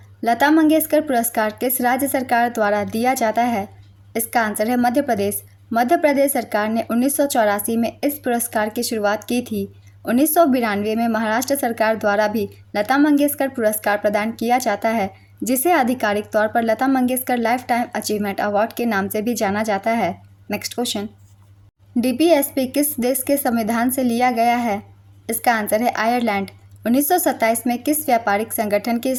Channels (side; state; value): both; identical; correlation 1.00